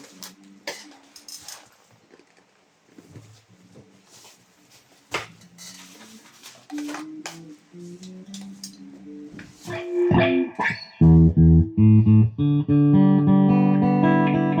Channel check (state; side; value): identical; both; correlation 1.00